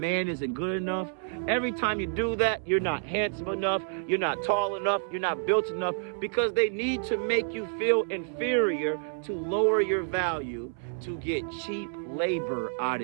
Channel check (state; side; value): silent; left; 59 dB below the other